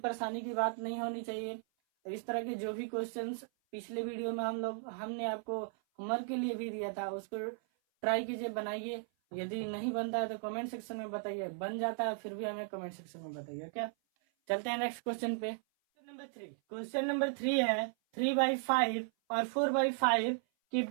की बात नहीं होनी चाहिए। इस तरह के जो भी क्वेश्चंस पिछले वीडियो में हमने आपको होमवर्क के लिए भी दिया था, उसको ट्राई कीजिए, बनाइए। यदि नहीं बनता है तो कमेंट सेक्शन में बताइए, बन जाता है फिर भी हमें कमेंट सेक्शन में बताइए। क्या, चलते हैं नेक्स्ट क्वेश्चन पे। क्वेश्चन नंबर 3 है 3/5 और 4/5 के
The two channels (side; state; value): left; silent; 54 dB below the other